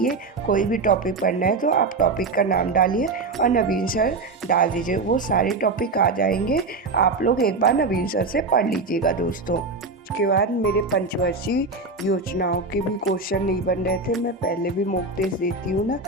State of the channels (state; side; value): quieter; left; 3.7 dB